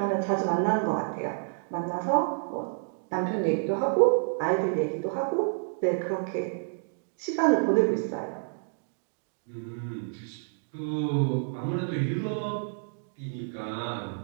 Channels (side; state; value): left; silent; digital silence